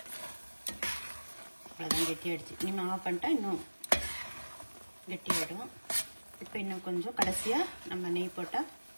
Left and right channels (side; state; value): both; inverted; correlation -1.00